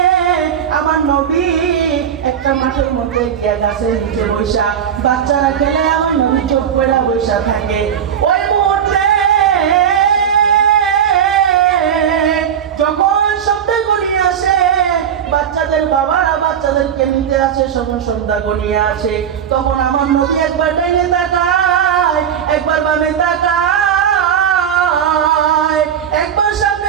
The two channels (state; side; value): quieter; left; 8.5 dB